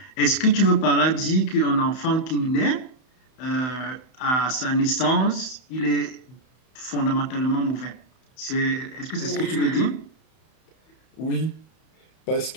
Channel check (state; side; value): late; right; 31 ms